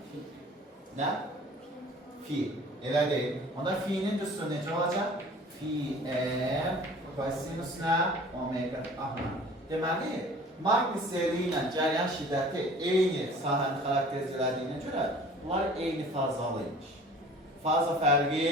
Nə? Fi. Elə deyil. Onda fi'nin düsturu necə olacaq? Fi kosinus nə? Omega t. Aha. Deməli, magniseli ilə cəryan şiddəti eyni sahəni xarakterizlədiyinə görə bunlar eyni fazalıymış. Faza fərqi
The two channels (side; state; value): both; normal; correlation 0.47